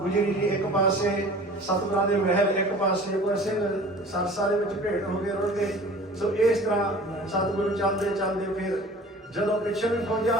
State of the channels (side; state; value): both; normal; correlation 0.43